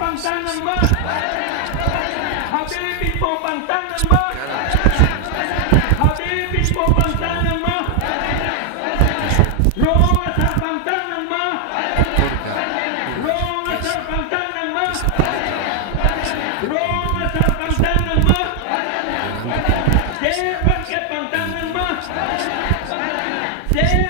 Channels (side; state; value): both; different; correlation 0.00